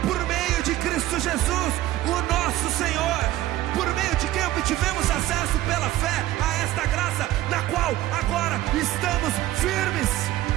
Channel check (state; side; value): quieter; left; 15.0 dB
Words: por meio de Cristo Jesus, o nosso Senhor, por meio de quem obtivemos acesso pela fé a esta graça, na qual agora estamos firmes